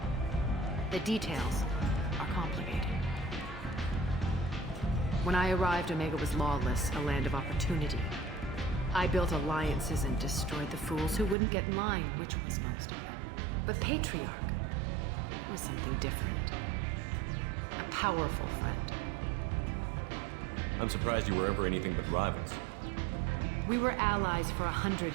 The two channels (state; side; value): drops out; left; at 11.4 s